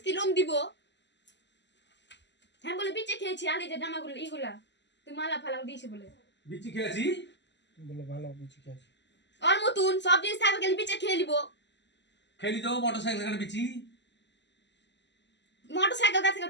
লোন দিব। হ্যাঁ বলে বিচে খেয়েছি। আর এই যে জামাগুলো এইগুলা তুই মালা ফালা দিয়েছে বলে বিচি খেয়েছি বলে ভালো কিছু খেয়েছি। ওর মতন সব জিনিস থাকবে গেলে বিচে খেয়ে নিব। খেলি তো মোটরসাইকেল এখানে বিচি। মোটরসাইকেল কাছ থেকে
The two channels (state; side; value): late; right; 0.51 ms